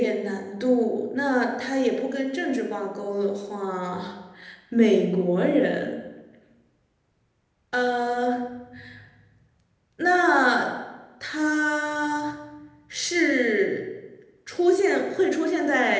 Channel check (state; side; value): identical; both; correlation 1.00